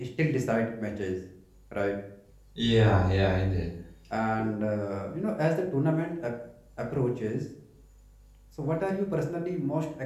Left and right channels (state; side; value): identical; both; correlation 1.00